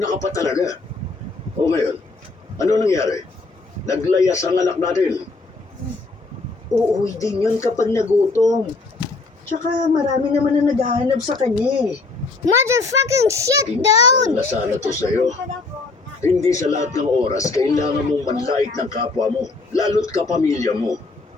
ka pa talaga. O ngayon, ano nangyari? Naglayas ang anak natin. Uuwi din yun kapag nagutom. Tsaka marami naman na naghahanap sa kanya eh. Motherfucking shit, dude! Na sana to sa'yo. Hindi sa lahat ng oras kailangan mong manlait ng kapwa mo, lalo't kapamilya mo.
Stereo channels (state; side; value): quieter; right; 3.7 dB